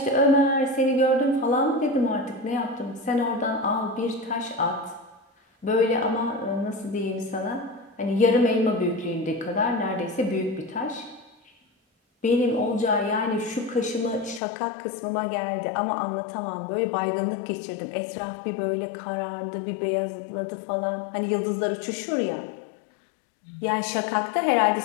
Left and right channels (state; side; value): drops out; right; at 14.4 s